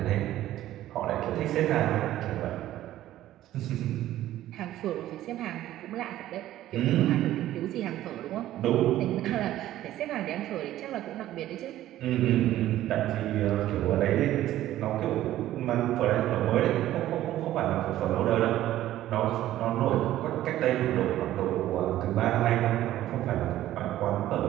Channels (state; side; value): quieter; left; 13.8 dB